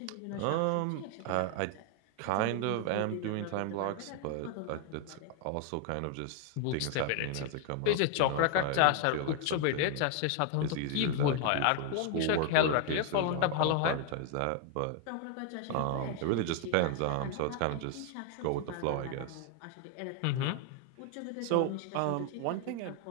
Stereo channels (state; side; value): different; both; correlation 0.00